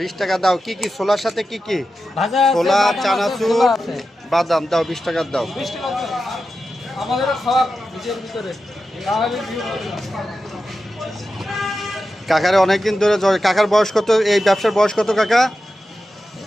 টাকা দাও। কি কি ছোলার সাথে কি কি? ভাজা আছে, ছোলা, বাদাম আছে, চানাচুর, ছোলা আছে। বাদাম দাও। 20 টাকা দাও। 20 টাকা আমাদের খাওয়া নিজের ভিতরে না হলে কাকারে অনেকদিন ধরে কাকার বয়স কত? এই ব্যবসার বয়স কত কাকা?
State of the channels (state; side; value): normal; both; correlation 0.91